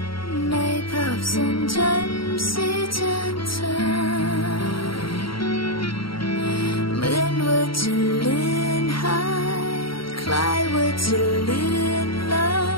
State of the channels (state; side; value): late; right; 0.74 ms